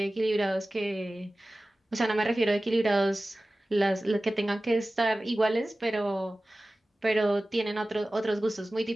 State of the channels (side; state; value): both; normal; correlation 0.97